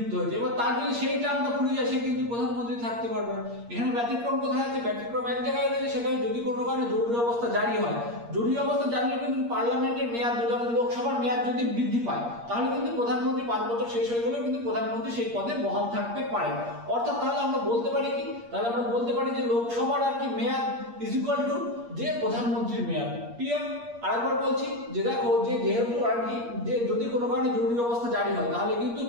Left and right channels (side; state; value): left; late; 8.5 ms